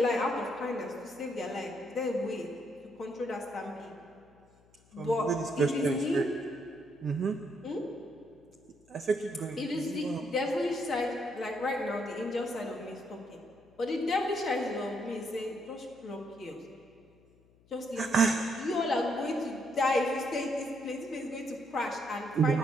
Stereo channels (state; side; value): noise; left; hum, 30 dB below the sound